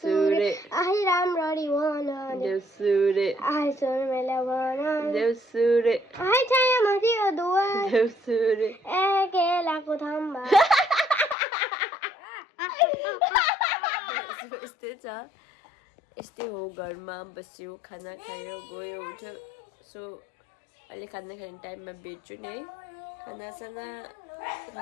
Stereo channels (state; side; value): drops out; right; at 11.4 s